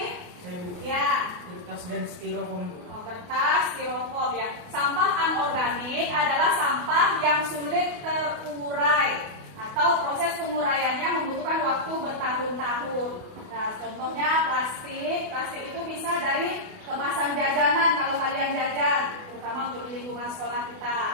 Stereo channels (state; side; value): late; left; 28 ms